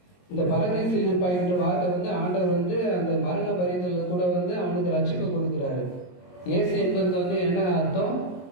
இந்த பரதேசில் இருப்பாய் என்ற வார்த்தை வந்து ஆண்டவர் வந்து அந்த மரண பரிதல கூட வந்து அவனுக்கு ரட்சிப்பு கொடுக்கிறாரு. இயேசு என்பதுக்கு வந்து என்ன அர்த்தம்?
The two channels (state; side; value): late; right; 22 ms